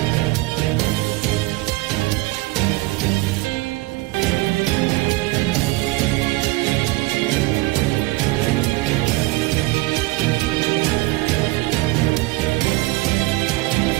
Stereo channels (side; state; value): left; quieter; 20.9 dB